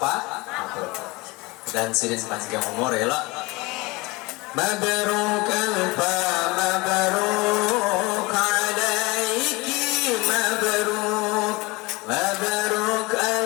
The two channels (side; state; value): right; quieter; 23.9 dB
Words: dan sirin panjang umur ya lo. Mabruk alfa mabruk alaiki mabruk mabruk